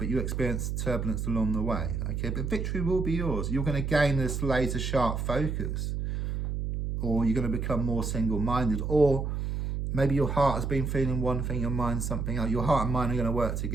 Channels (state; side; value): noise; right; hum, 2 dB below the sound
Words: you experience turbulence along the way, okay? But victory will be yours. You're going to gain this laser sharp focus, or you're going to become more single-minded, or maybe your heart has been feeling one thing, your mind something else. Your heart and mind are going to work